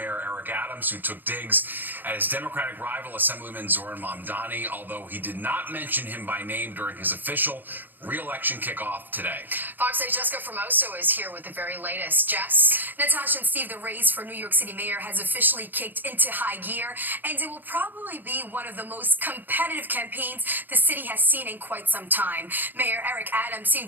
Eric Adams, who took digs at his Democratic rival, Assemblyman Zoran Mamdani, although he did not mention him by name during his official re-election kickoff today. Fox 8's Jessica Formoso is here with the very latest. Jess? Natasha and Steve, the race for New York City mayor has officially kicked into high gear, and it will probably be one of the most competitive campaigns the city has seen in quite some time. Mayor Eric Adams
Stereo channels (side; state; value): left; late; 0.091 ms